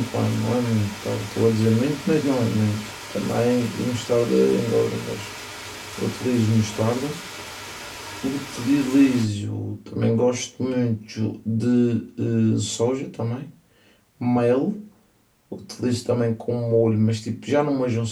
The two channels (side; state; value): both; identical; correlation 1.00